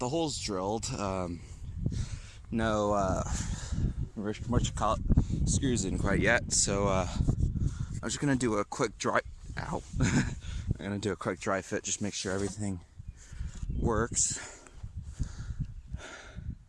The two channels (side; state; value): both; identical; correlation 1.00